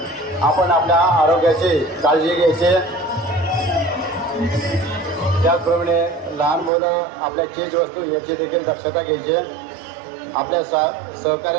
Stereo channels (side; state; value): left; drops out; at 6.7 s